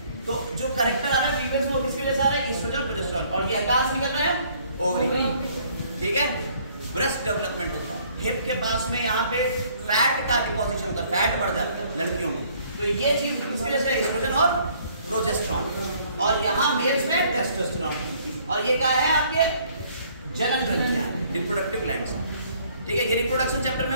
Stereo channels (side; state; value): both; inverted; correlation -0.61